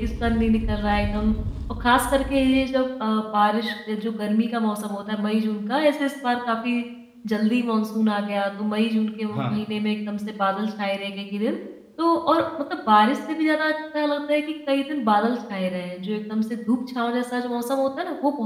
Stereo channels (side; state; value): both; identical; correlation 1.00